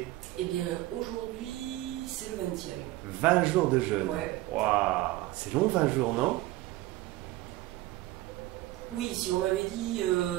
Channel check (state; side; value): quieter; left; 17.1 dB